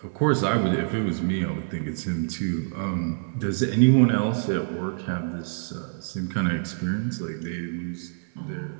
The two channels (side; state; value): left; silent; 61 dB below the other